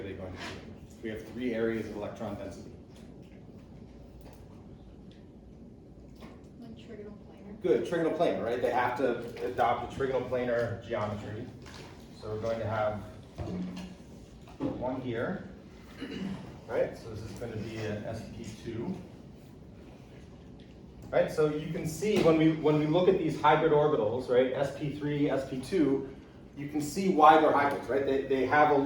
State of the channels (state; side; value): identical; both; correlation 1.00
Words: they going to be in? We have 3 areas of electron density. Good, trigonal planar, right? They have to adopt a trigonal planar geometry. So we're going to have one here, right? So this is going to be an sp2. Right, so you can see when we look at these hybrid orbitals, right, sp3, sp2, you can see why they're hybrids, right? They have a